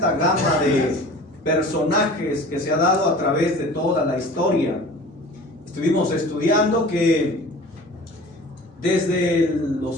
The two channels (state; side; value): normal; both; correlation 0.42